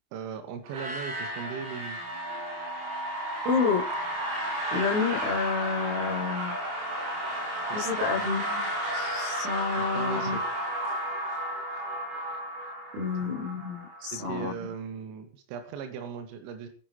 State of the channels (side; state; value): left; late; 28 ms